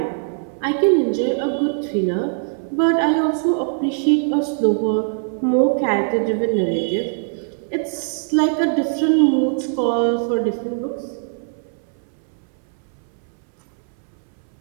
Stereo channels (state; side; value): silent; left; 65 dB below the other